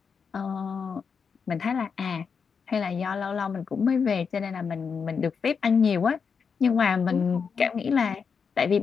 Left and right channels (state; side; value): quieter; right; 6.0 dB